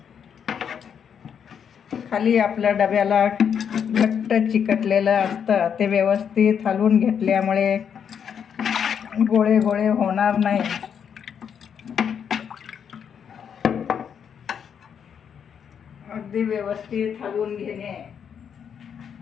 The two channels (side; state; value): right; quieter; 7.7 dB